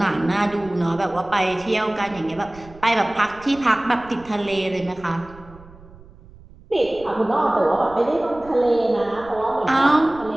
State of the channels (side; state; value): right; noise; rumble, 21 dB below the sound